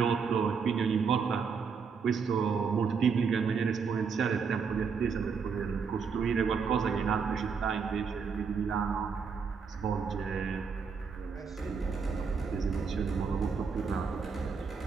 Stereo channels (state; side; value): quieter; left; 5.7 dB